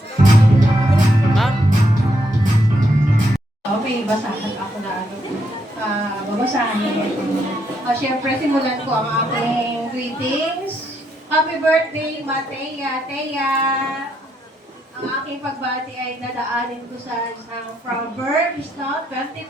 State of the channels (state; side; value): normal; both; correlation 0.77